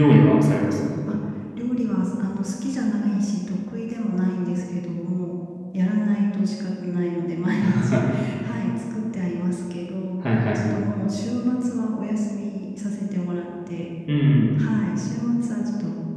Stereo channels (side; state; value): both; identical; correlation 1.00